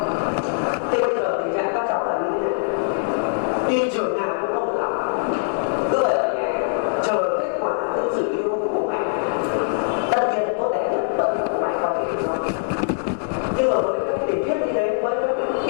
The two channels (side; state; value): right; silent; digital silence